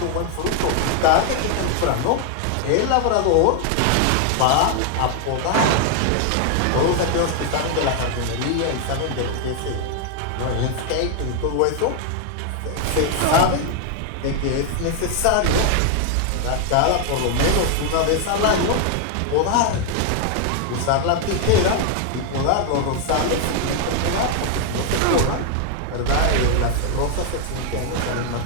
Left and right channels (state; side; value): different; both; correlation 0.01